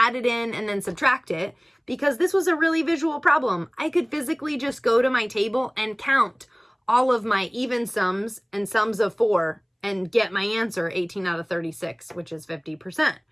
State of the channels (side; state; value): both; identical; correlation 1.00